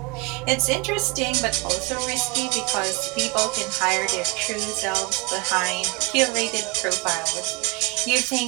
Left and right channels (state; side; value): quieter; left; 27.9 dB